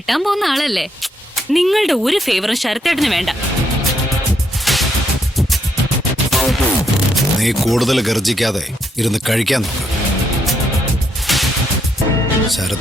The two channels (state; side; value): normal; both; correlation 0.76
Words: പോകുന്ന ആളല്ലേ. നിങ്ങളുടെ ഒരു ഫേവറും ശരത്തേട്ടന് വേണ്ട. നീ കൂടുതൽ ഗർജിക്കാതെ ഇരുന്ന് കഴിക്കാൻ നോക്ക്.